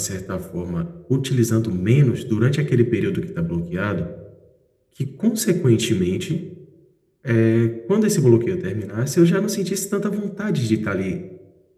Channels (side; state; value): both; identical; correlation 1.00